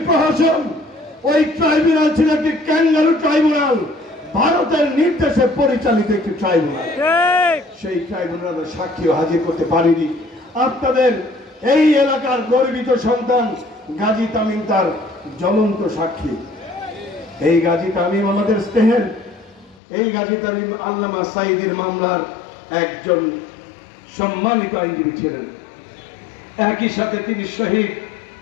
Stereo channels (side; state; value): right; drops out; at 19.8 s